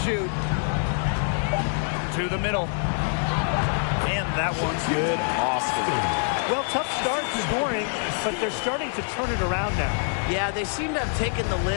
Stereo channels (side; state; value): right; silent; 62 dB below the other